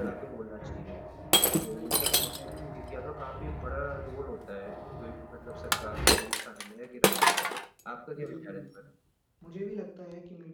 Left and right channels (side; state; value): both; identical; correlation 1.00